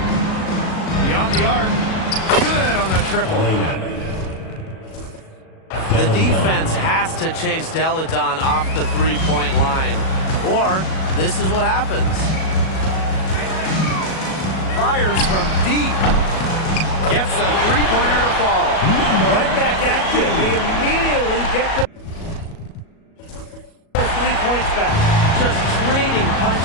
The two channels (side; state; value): right; late; 37 ms